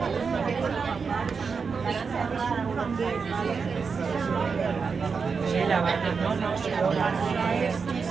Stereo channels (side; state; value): left; quieter; 5.4 dB